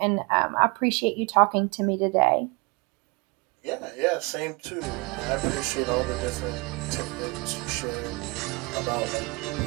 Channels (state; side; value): quieter; left; 27.8 dB